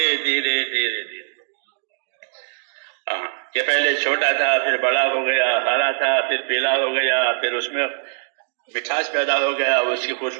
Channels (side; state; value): left; silent; digital silence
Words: دھیرے دھیرے دھیرے، کہ پہلے چھوٹا تھا، پھر بڑا ہو گیا، ہرا تھا، پھر پیلا ہو گیا، پھر اس میں مٹھاس پیدا ہو گیا، اس کی